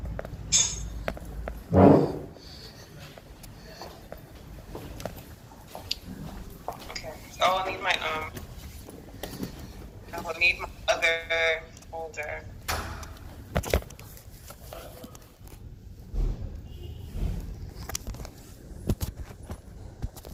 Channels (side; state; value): both; identical; correlation 1.00